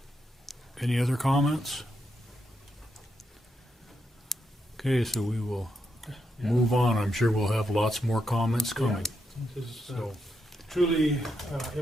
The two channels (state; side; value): normal; both; correlation 0.82